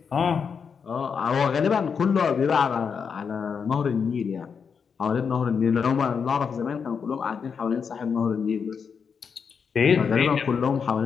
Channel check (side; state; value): right; quieter; 6.3 dB